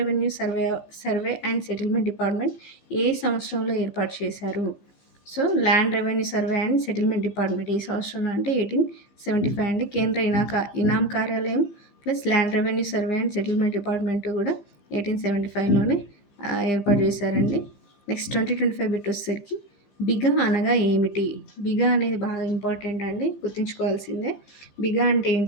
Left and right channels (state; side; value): late; right; 15 ms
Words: survey and settlement department ఏ సంవత్సరంలో ఏర్పాటు చేశారు? So, land revenue survey and settlement department ఏ సంవత్సరంలో అంటే 1875 అండి. కేంద్ర ఇనాం కార్యాలయం plus land revenue survey and settlement department కూడా 1875లోనే ఏర్పాటు చేశారండి. నెక్స్ట్ 2025 బిట్ వచ్చేసరికి బిగా అనగా ఏమిటి? బిగా అనేది బాగా ఇంపార్టెంట్ అండి. గుర్తుంచుకోవాల్సిందే. బిగా అంటే